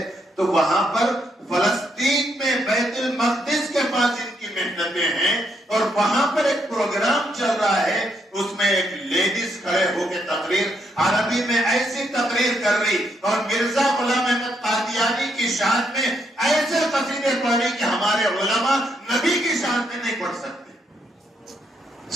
تو وہاں پر فلسطین میں بیت المقدس کے پاس ان کی محنتیں ہیں، اور وہاں پر ایک پروگرام چل رہا ہے، اس میں ایک لیڈیز کھڑے ہو کے تقریر عربی میں ایسی تقریر کر رہی، اور مرزا غلام احمد قادیانی کی شان میں ایسے قصیدے پڑھ رہی کہ ہمارے علماء نبی کی شان میں نہیں پڑھ سکتے۔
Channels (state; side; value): normal; both; correlation 0.76